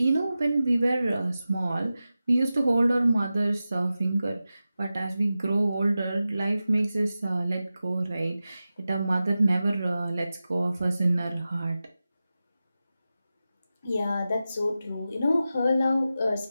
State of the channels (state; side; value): inverted; both; correlation -0.94